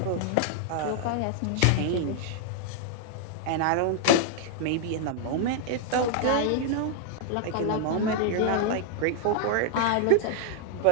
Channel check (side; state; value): both; different; correlation -0.01